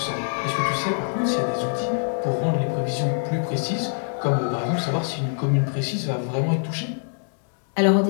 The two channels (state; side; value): silent; right; digital silence